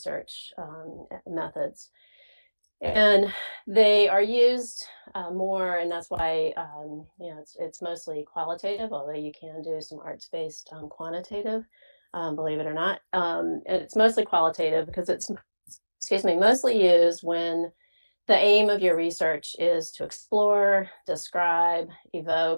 methods. And they are used more, and that's why it's mostly qualitative, although you can do some arts-based quantitative, believe it or not. And it's mostly qualitative because it's, mostly used when the aim of your research is to explore, describe,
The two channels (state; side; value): inverted; both; correlation -1.00